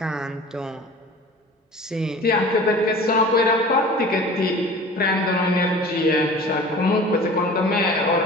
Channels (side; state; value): both; normal; correlation 0.41